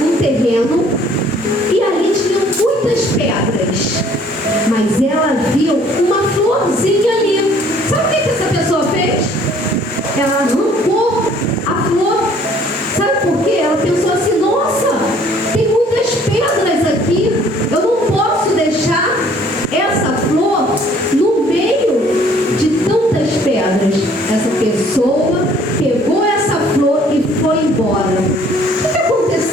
terreno e ali tinham muitas pedras, mas ela viu uma florzinha ali. Sabe o que essa pessoa fez? Ela arrancou a flor. Sabe por quê? Ela pensou assim, nossa, tem muitas pedras aqui, eu não posso deixar essa flor no meio de tantas pedras. Essa pessoa pegou essa flor e foi embora. O que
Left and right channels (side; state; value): both; normal; correlation 0.58